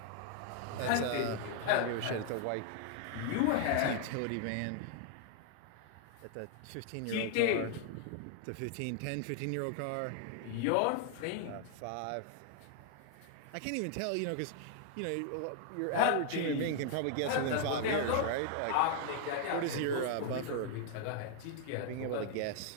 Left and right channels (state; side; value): different; both; correlation 0.00